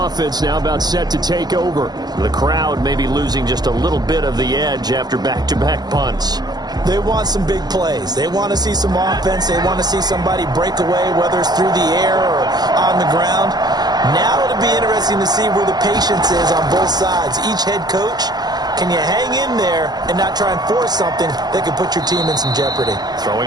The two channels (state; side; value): late; left; 0.20 ms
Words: now about set to take over. The crowd may be losing just a little bit of the edge after back-to-back punts. They want some big plays. They want to see some offense. They want to see somebody break away, whether it's through the air or on the ground. Now it'll be interesting to see where the patience is on both sides. Each head coach, can you hang in there and not try and force something that could put your team in some jeopardy?